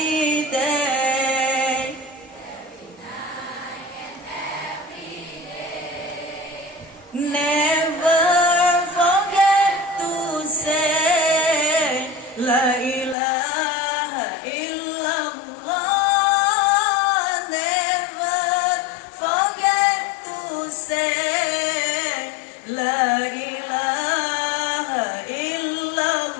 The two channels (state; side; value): drops out; right; at 13.2 s